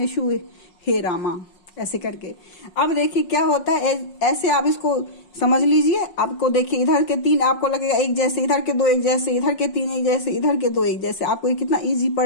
हे रामा, ऐसे करके। अब देखिए क्या होता है, ऐसे आप इसको समझ लीजिए। आपको देखिए इधर के 3 आपको लगेगा एक जैसे, इधर के 2 एक जैसे, इधर के 3 एक जैसे, इधर के 2 एक जैसे। आपको ये कितना इजी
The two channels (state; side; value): late; right; 5.5 ms